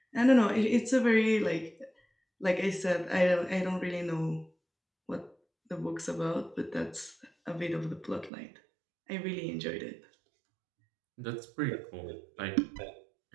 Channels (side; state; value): left; drops out; at 8.3 s